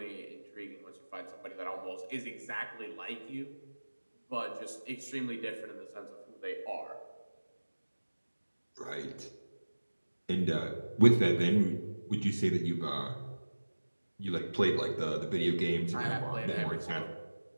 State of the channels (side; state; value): both; inverted; correlation -1.00